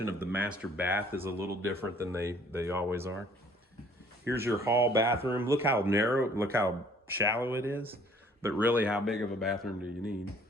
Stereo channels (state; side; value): normal; both; correlation 0.57